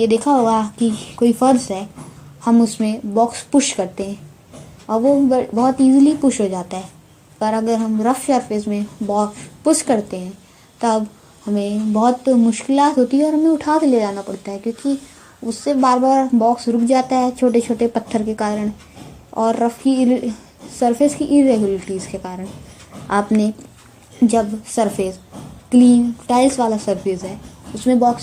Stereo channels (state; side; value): identical; both; correlation 1.00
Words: देखा होगा कि कोई फर्श है, हम उसमें बॉक्स पुश करते हैं और वो बहुत इजीली पुश हो जाता है। पर अगर हम रफ सरफेस में बॉक्स पुश करते हैं तब हमें बहुत मुश्किलात होती है और हमें उठा के ले जाना पड़ता है, क्योंकि उससे बार बार बॉक्स रुक जाता है छोटे छोटे पत्थर के कारण और रफ की सरफेस की इरेगुलरिटीज़ के कारण। आपने जब सरफेस क्लीन टाइल्स वाला सरफेस है उसमें